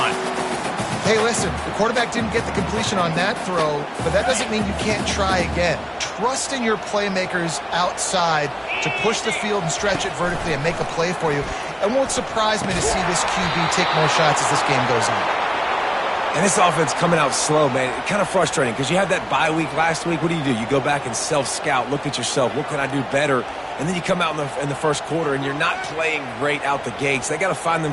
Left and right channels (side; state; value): both; identical; correlation 1.00